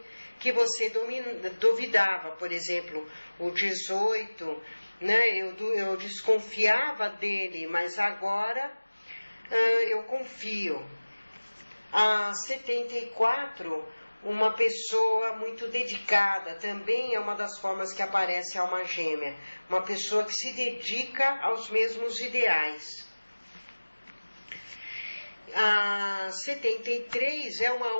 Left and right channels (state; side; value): inverted; both; correlation -1.00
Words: que você duvidava. Por exemplo, o 18, né, eu desconfiava dele, mas agora eu confio. A 74, uma pessoa muito dedicada, também é uma das formas que aparece a alma gêmea. Uma pessoa que se dedica aos mesmos ideais. A 73 é uma